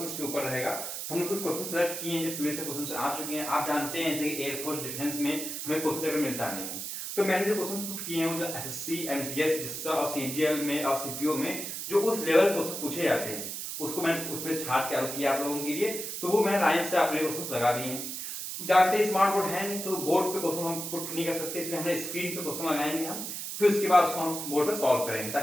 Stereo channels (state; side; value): noise; right; hiss, 6 dB below the sound